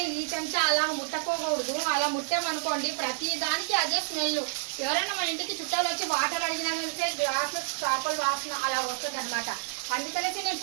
ఈ చెంచా అలా ముట్టకోకూడదు. అలా ముట్టామనుకోండి ప్రతి దానికి అదే స్మెల్. ఎవరైనా మన ఇంటికి చుట్టాలు వచ్చి వాటర్ అడిగినా వెళ్తే గ్లాసులో చేపలు వాసన అలా వస్తుంది అనమాట. అందుకనేసి నేను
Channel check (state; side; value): silent; left; digital silence